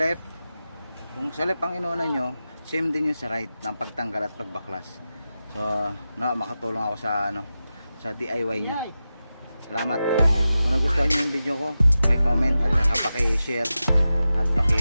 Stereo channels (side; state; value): both; inverted; correlation -0.92